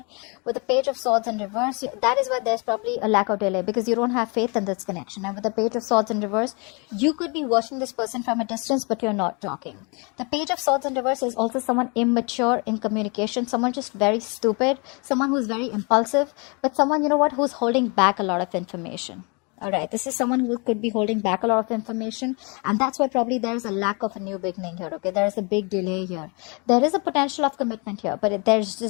With the Page of Swords in reverse, that is why there's probably a lack of delay, because you don't have faith in this connection. And with the Page of Swords in reverse, you could be watching this person from a distance, but you're not talking. The Page of Swords in reverse is also someone immature in communication, someone just very stupid, someone who's very impulsive, but someone, you know what, who's holding back a lot of information. All right, this is someone who could be holding back a lot of information, and that's why probably there's a lack of a new beginning here, okay? There's a big delay here. There is a potential of commitment here, but there's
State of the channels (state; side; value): quieter; right; 31.9 dB